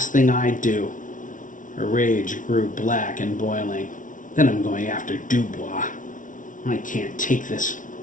thing I do." Her rage grew black and boiling. "Then I'm going after Dubois. I can't take this.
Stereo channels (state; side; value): late; right; 0.38 ms